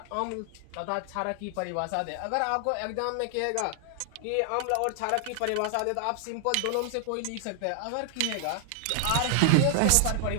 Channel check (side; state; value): both; different; correlation 0.00